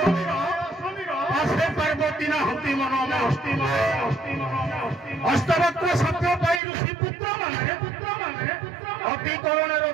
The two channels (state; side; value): drops out; left; at 6.6 s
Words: আসে পার্বতী না হতি মনমে অষ্টবক্র সত্য পাই ঋষি পুত্র মানে অতি করুণের